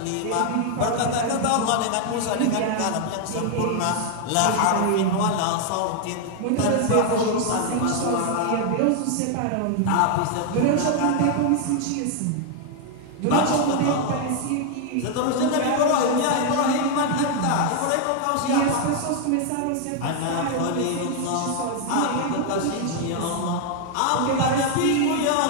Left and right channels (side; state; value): both; different; correlation 0.00